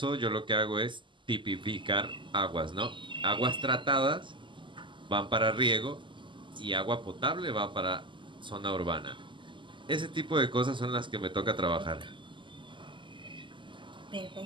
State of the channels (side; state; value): left; late; 0.24 ms